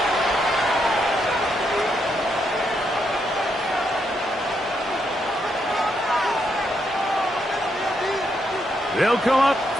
They'll come up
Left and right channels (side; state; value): both; normal; correlation 0.78